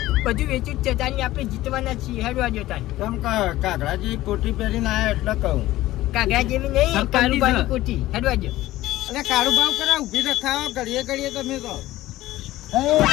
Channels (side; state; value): right; quieter; 16.2 dB